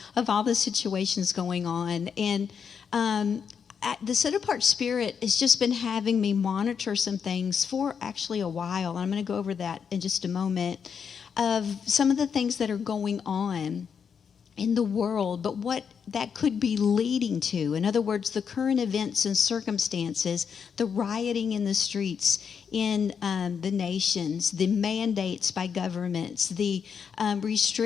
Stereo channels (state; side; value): quieter; right; 6.8 dB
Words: of all the situations going on. And the set-apart spirit has just been having me monitor some things for actually a while. I'm going to go over that in just a moment, of some of the things that are going on in the world, but what that could be leading to. In other words, the current events and circumstances, the rioting in the streets in the nations, the mandates by governments, the